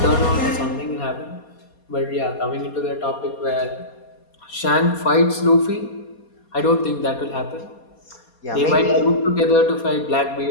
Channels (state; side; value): late; right; 4.2 ms